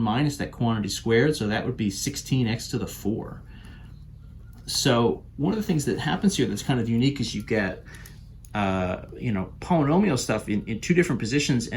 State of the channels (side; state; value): both; identical; correlation 1.00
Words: that quantity squared, so that would be 16x to the 4. So one of the things that happens here that's kind of unique is you get polynomial stuff in two different positions,